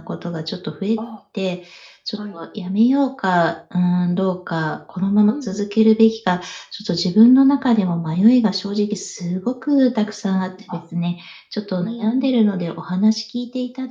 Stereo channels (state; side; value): identical; both; correlation 1.00